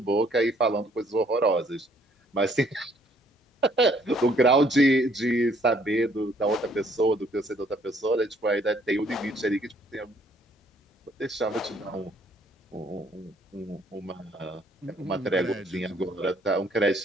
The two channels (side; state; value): both; normal; correlation 0.64